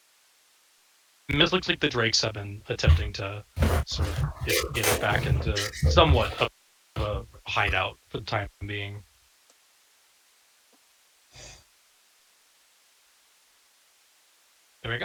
it looks like the Drakes have been attempting to sort of get it back into somewhat of a hideout for the time being. There we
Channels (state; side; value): identical; both; correlation 1.00